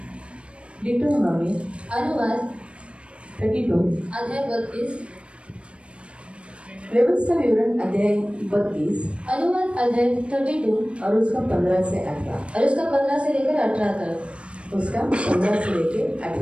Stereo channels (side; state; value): left; late; 0.059 ms